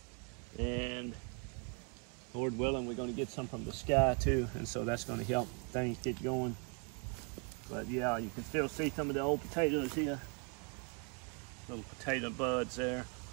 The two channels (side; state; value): left; quieter; 34.7 dB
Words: And Lord willing, we're going to get some from the sky too, and so that's going to help things get going. But yeah, you can still see some of the old potatoes here. Little potato buds there.